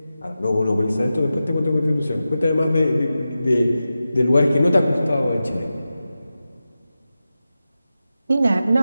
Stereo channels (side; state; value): both; inverted; correlation -0.93